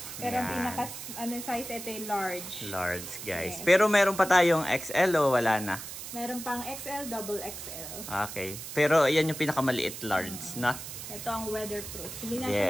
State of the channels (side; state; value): right; noise; hiss, 9 dB below the sound